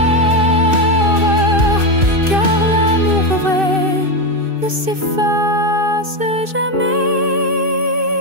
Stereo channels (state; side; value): late; left; 2.6 ms